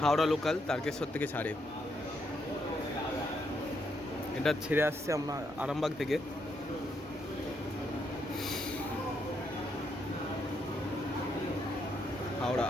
Howrah local Tarakeswar থেকে ছাড়ে। এটা ছেড়ে আসছে আমরা আরামবাগ থেকে। হাওড়া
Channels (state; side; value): normal; both; correlation 0.77